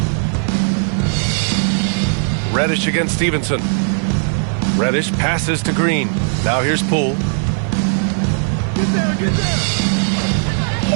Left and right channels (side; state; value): left; silent; 57 dB below the other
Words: Reddish against Stevenson. Reddish passes to Green. Now here's Poole.